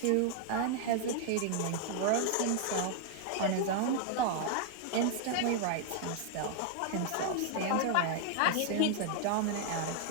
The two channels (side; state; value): both; different; correlation 0.00